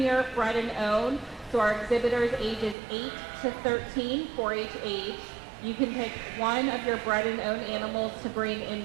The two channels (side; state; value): left; drops out; at 2.8 s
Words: Bred and Owned. So our exhibitors ages 8 to 13, 4-H age. You can pick one of your bred and owned animals to bring in